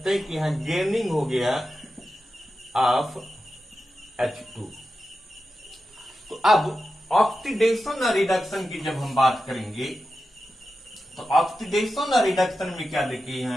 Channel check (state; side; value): normal; both; correlation 0.91